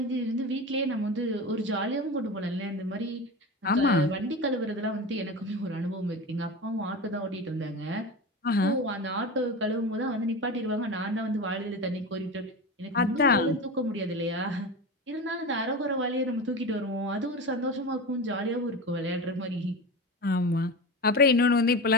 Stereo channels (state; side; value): normal; both; correlation 0.25